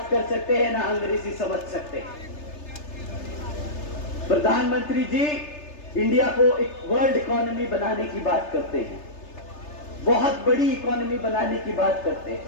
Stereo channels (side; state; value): right; late; 3.3 ms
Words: कर सकते हैं, ना अंग्रेजी समझ सकते हैं। प्रधानमंत्री जी इंडिया को एक वर्ल्ड इकोनॉमी बनाने की बात करते हैं, बहुत बड़ी इकोनॉमी बनाने की बात करते